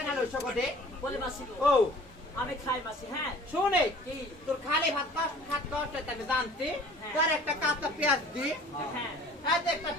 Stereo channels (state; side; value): normal; both; correlation 0.48